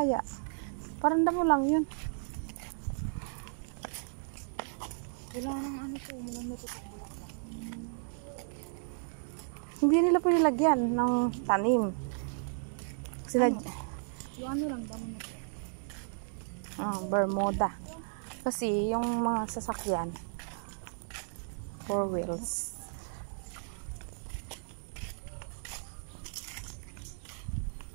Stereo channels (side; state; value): left; silent; digital silence